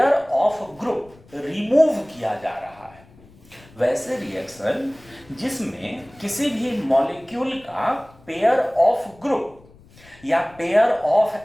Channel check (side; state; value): left; noise; rumble, 26 dB below the sound